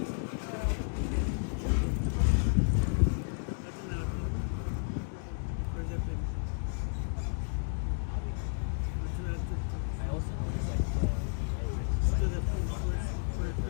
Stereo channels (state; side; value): silent; right; 56 dB below the other